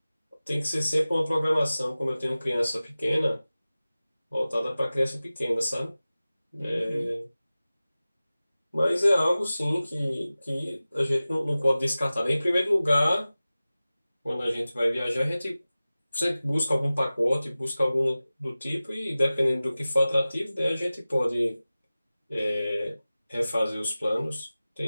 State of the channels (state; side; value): inverted; both; correlation -0.96